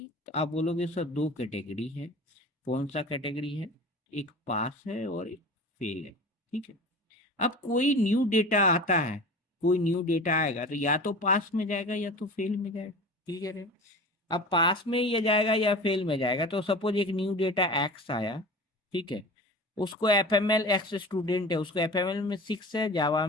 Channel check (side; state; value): both; normal; correlation 0.36